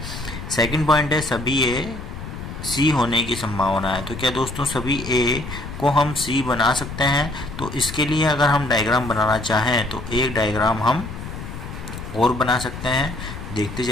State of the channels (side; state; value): left; noise; rumble, 9 dB below the sound